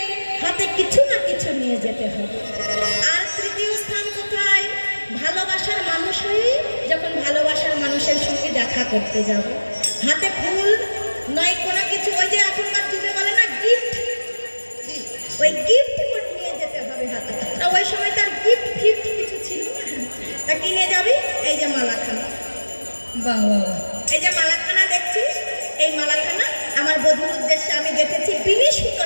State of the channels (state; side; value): inverted; both; correlation -1.00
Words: হাতে কিছু না কিছু নিয়ে যেতে হবে। আর তৃতীয় স্থান কোথায়? ভালোবাসার মানুষ হয়ে যখন ভালোবাসার মানুষের সঙ্গে দেখা করতে যাব, হাতে ফুল নয় কোনো কিছু, ওই যে এখনকার যুগে বলে না গিফট, ওই গিফট নিয়ে যেতে হবে হাতে। তা ওই সময় তার গিফট ফিফট কিছু ছিল না। তা কিনে যাবি? এই যে মালাখানা, বাবা, এই যে মালাখানা দেখছিস, এই মালাখানা আমার বধূর উদ্দেশ্যে আমি গেঁথেছি বিনি